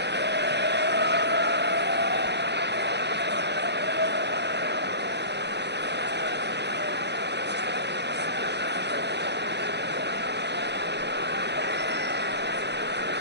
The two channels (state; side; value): late; left; 0.50 ms